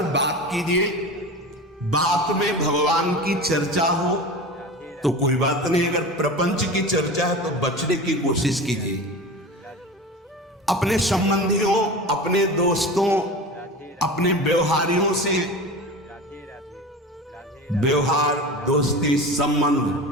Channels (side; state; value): both; normal; correlation 0.31